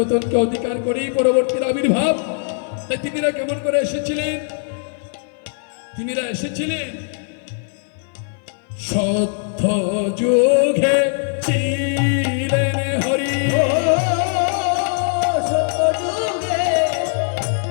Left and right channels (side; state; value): right; silent; 56 dB below the other